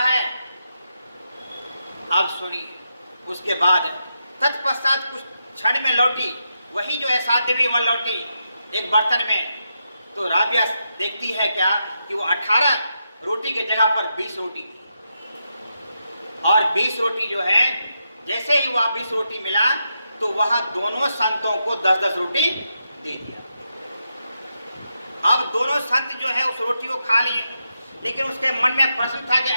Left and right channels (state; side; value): inverted; both; correlation -0.84